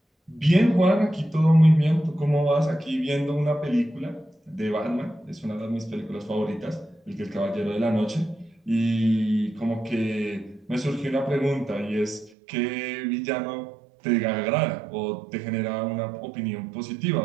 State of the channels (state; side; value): drops out; left; at 12.4 s